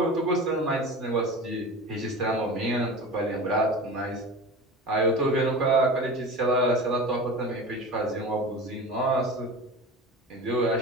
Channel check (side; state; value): both; normal; correlation 0.32